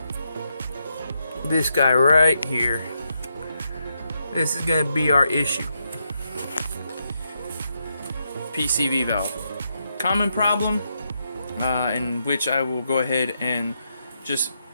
this guy right here. This is going to be our issue. PCV valve. Common problem, in which I will go ahead and just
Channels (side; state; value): both; inverted; correlation -0.81